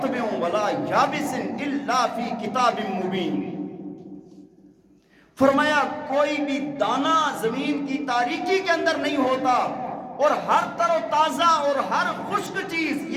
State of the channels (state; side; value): identical; both; correlation 1.00